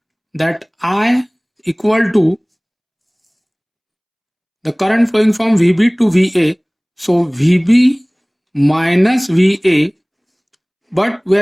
that I equal to the current flowing from VB to VA, so VB minus VA, but we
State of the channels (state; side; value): identical; both; correlation 1.00